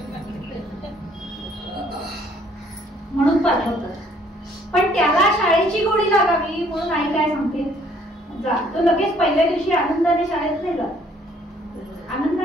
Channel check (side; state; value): both; normal; correlation 0.62